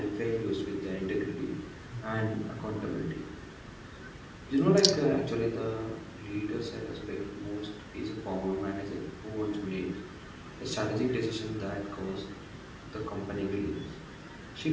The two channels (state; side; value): identical; both; correlation 1.00